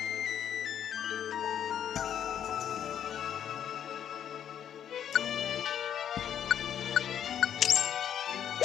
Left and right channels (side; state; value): right; quieter; 9.4 dB